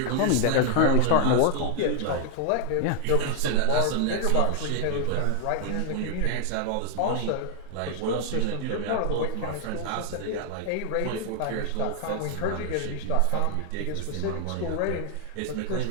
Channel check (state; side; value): different; both; correlation 0.00